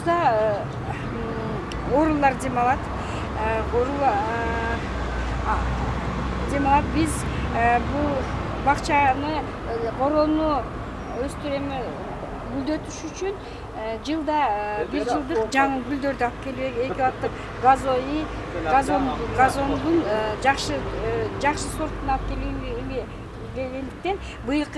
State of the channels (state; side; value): identical; both; correlation 1.00